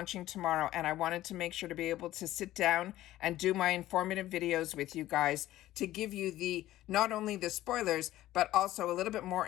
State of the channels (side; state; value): right; quieter; 14.8 dB